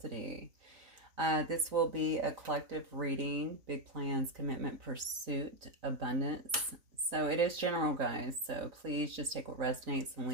This will be a collective reading, big plans, commitment, pursuit, abundance. So it is general, guys. So please just take what resonates and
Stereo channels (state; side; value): late; left; 3.9 ms